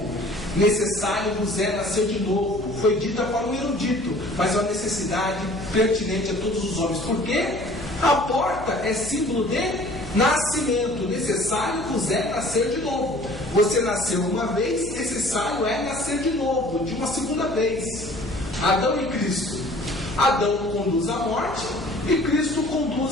Necessário vos é nascer de novo. Foi dita para o erudito, mas é uma necessidade pertinente a todos os homens. Por quê? A porta é símbolo de nascimento. Necessário vos é nascer de novo. Você nasceu uma vez, necessário é nascer de novo, de uma segunda vez. Adão e Cristo. Adão conduz à morte e Cristo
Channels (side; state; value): left; noise; hum, 14 dB below the sound